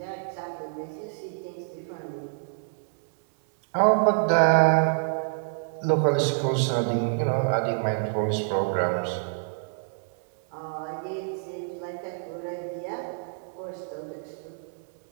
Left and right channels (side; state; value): left; silent; 60 dB below the other